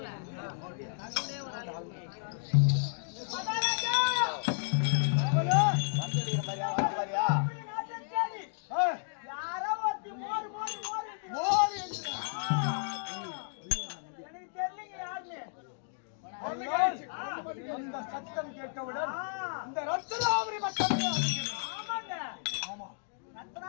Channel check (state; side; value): silent; right; digital silence